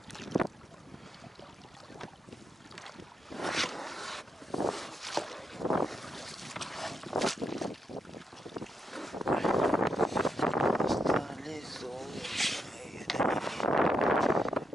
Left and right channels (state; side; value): normal; both; correlation 0.82